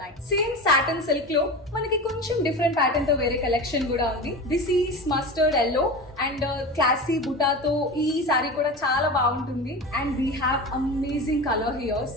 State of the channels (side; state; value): both; normal; correlation 0.28